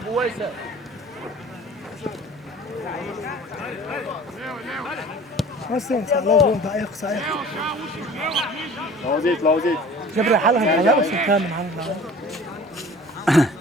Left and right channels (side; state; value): both; normal; correlation 0.44